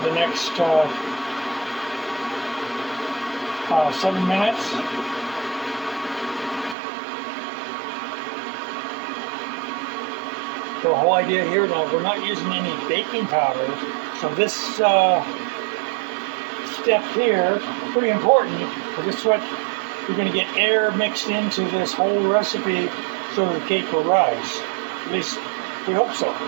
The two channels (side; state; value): left; drops out; at 6.8 s